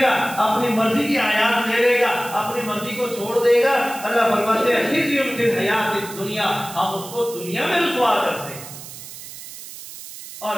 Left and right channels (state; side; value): noise; right; hiss, 13 dB below the sound